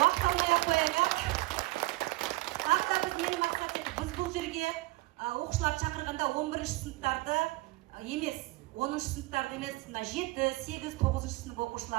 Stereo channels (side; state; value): left; quieter; 20.6 dB